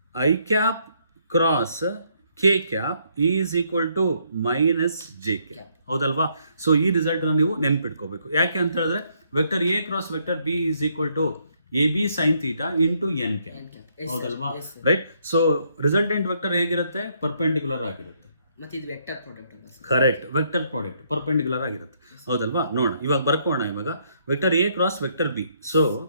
I cap cross K cap is equal to minus J cap. ಹೌದಲ್ವಾ? So ಈ result ನೀವು ನೆನ್ಪಿಟ್ಕೋಬೇಕು. ಯಾಕೆ ಅಂತ ಹೇಳಿದ್ರೆ vector A cross vector B is equal to A B sine theta into N cap. N cap. Yes, sir. ಹೌದಲ್ವಾ? Yes, sir. ರೈಟ್. ಸೊ ರಿಸಲ್ಟೆಂಟ್ ವೆಕ್ಟರ್ ಹೇಗಿರುತ್ತೆ? ಪರ್ಪೆಂಡಿಕ್ಯುಲರ್ ಆಗಿರುತ್ತೆ. ಮತ್ತೆ ಇದು ವೆಕ್ಟರ್ ಪ್ರಾಡಕ್ಟ್ ಅಲ್ಲ sir? Correct. Vector product perpendicular ಆಗಿರುತ್ತೆ. ಹೌದಲ್ವಾ? ನೋಡೋಣ ಇವಾಗ ಬರ್ಕೋಣ. ಇವಾಗ vector A cross vector B. So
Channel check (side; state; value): both; inverted; correlation -0.71